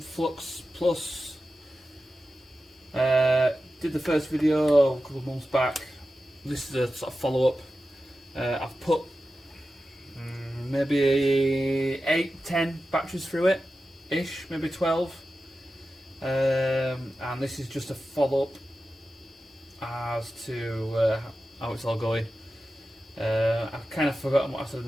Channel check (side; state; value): both; normal; correlation 0.92